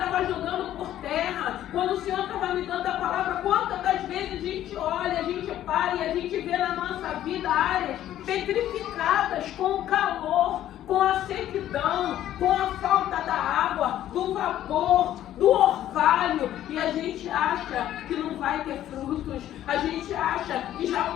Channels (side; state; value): right; quieter; 12.3 dB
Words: jogando por terra. Quando o Senhor estava me dando a palavra, quantas das vezes a gente olha, a gente para e a gente vê na nossa vida áreas petrificadas com o calor, com a sequidão, com a falta da água, do vapor, do orvalho, e a gente acha que não vai ter frutos, a gente acha que já